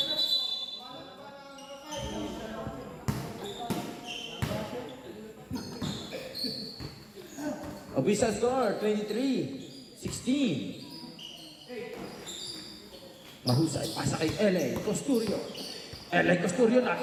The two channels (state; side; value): identical; both; correlation 1.00